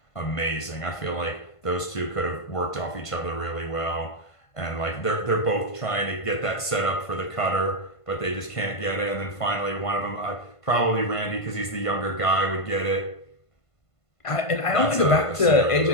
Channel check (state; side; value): late; right; 1.5 ms